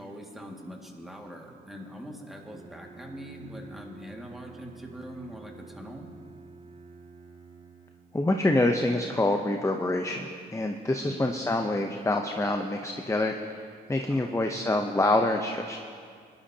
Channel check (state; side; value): normal; both; correlation 0.73